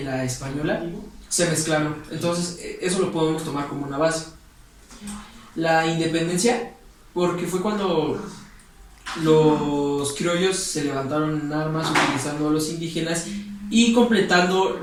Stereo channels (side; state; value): both; identical; correlation 1.00